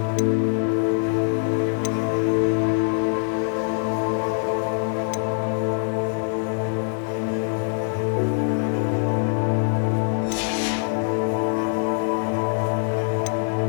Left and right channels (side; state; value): right; silent; 63 dB below the other